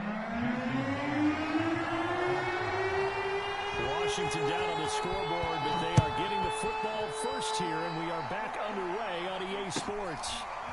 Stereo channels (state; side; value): identical; both; correlation 1.00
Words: Washington down on the scoreboard, but they are getting the football first here, and we are back underway on EA Sports.